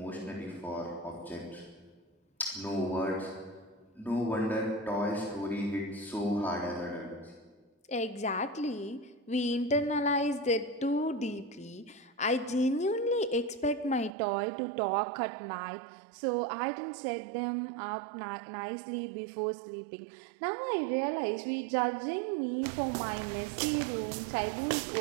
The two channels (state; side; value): drops out; left; at 14.1 s